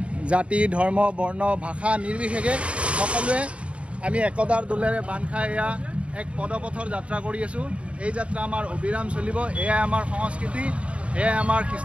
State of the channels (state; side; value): late; left; 0.061 ms